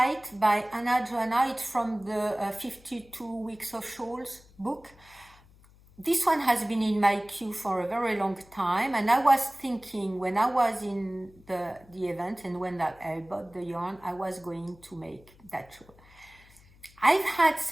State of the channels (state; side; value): noise; left; hum, 26 dB below the sound